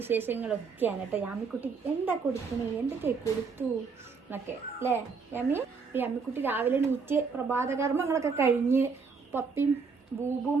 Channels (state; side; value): quieter; left; 5.1 dB